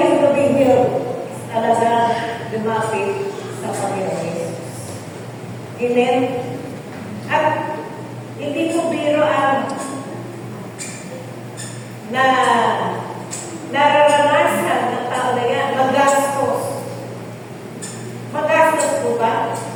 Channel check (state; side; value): identical; both; correlation 1.00